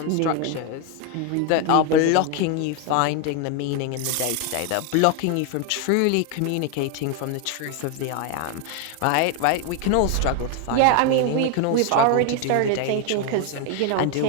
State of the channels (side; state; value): both; different; correlation 0.01